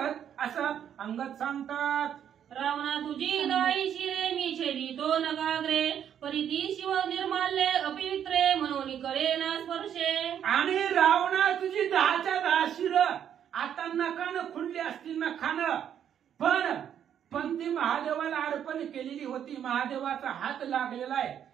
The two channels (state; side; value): quieter; left; 9.3 dB